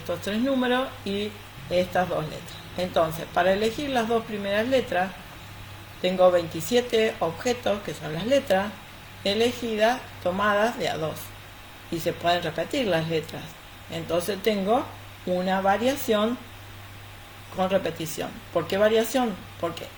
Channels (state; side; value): identical; both; correlation 1.00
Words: 3 números y estas 2 letras. Entonces, para elegir las 2 primeras letras, tengo 27 objetos, que son las letras, elegidas, tomadas de a 2. Y se pueden repetir las letras. Entonces tengo una variación con repetición. ¿Por qué variación? Porque